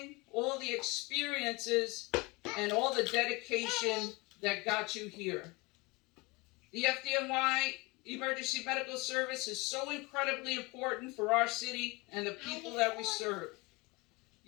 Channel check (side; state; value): right; quieter; 24.7 dB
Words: all the experiences, and all the dedication that got you here. The FDNY Emergency Medical Service is so incredibly important for our city and the people that we serve.